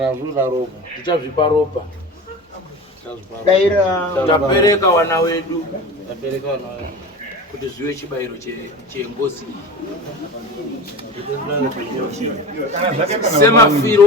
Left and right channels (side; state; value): both; normal; correlation 0.32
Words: zvinoda ropa tichazvipa ropa. daira Tapereka wana wedu kuti zviwe chibayiro chengozi